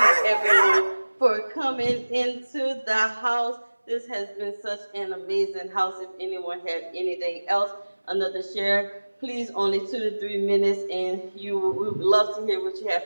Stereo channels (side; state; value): both; inverted; correlation -1.00